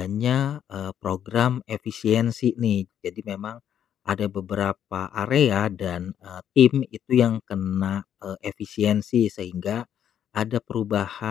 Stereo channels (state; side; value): quieter; right; 9.5 dB